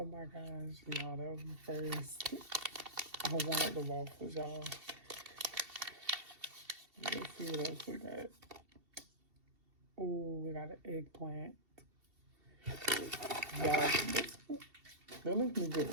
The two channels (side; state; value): left; late; 2.7 ms